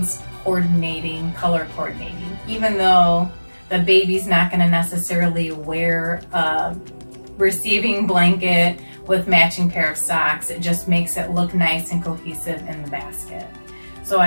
coordinating, color coordinating. Even though the baby's not gonna necessarily wear a receiving blanket with matching pair of socks, it just makes it look nice and cohesive in the basket. So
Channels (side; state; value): both; inverted; correlation -1.00